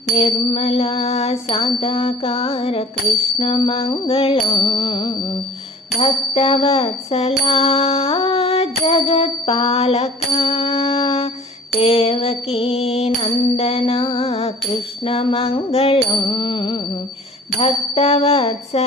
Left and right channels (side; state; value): both; normal; correlation 0.47